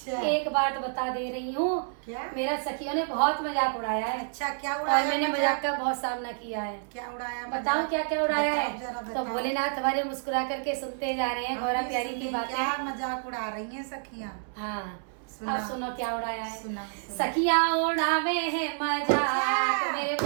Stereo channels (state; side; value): silent; left; 59 dB below the other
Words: एक बात बता दे रही हूँ। क्या? मेरा सखियों ने बहुत मजाक उड़ाया है। अच्छा, क्या और उड़ाया? मैंने मजाक का बहुत सामना किया है। क्या उड़ाया? बताऊं क्या क्या उड़ाया है? जरा तो बताओ। भोलेनाथ हमारे मुस्कुरा करके सुनते जा रहे हैं हम गौरा भी प्यारी की सुने, बातें। क्या मजाक उड़ा रही हैं सखियाँ? हाँ, सुना। अब सुनो क्या उड़ाया है। सुना। सखियाँ उड़ावे है मजाक मेरे